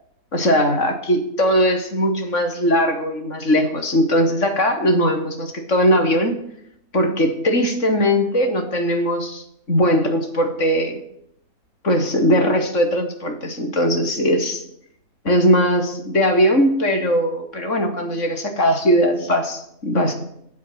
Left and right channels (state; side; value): late; right; 3.6 ms